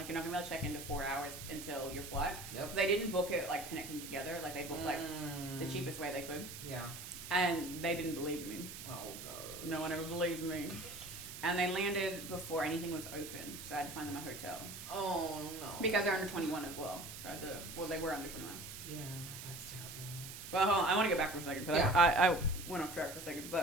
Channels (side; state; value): right; noise; hiss, 10 dB below the sound